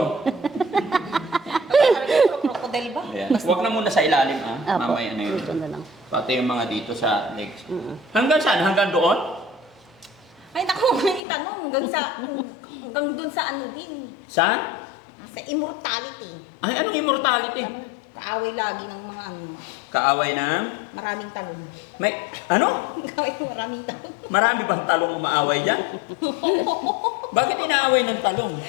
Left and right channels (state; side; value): drops out; right; at 11.2 s